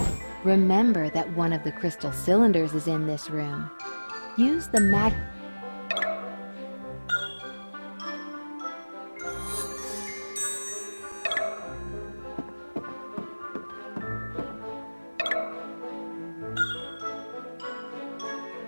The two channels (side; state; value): both; inverted; correlation -1.00